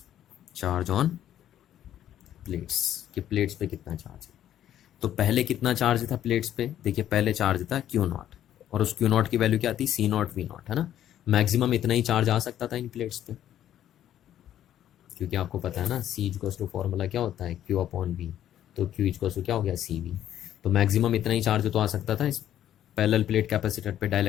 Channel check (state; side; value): quieter; right; 11.3 dB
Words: Charge on plates कि प्लेट्स पे कितना चार्ज है। तो पहले कितना चार्ज था प्लेट्स पे, देखिए पहले चार्ज था क्यू नॉट, और उस क्यू नॉट की वैल्यू क्या थी, सी नॉट वी नॉट, है ना। मैक्सिमम इतना ही चार्ज आ सकता था इन प्लेट्स पे, क्योंकि आपको पता है ना सी इक्वल्स टू फॉर्मूला क्या होता है, क्यू अपॉन वी। तो क्यू इक्वल्स टू क्या हो गया, सी वी। तो मैक्सिमम इतना ही चार्ज तो आ सकता था इस पैरेलल प्लेट कैपेसिटर पे